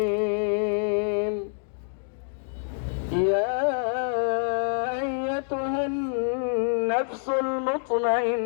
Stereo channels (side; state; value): right; silent; 61 dB below the other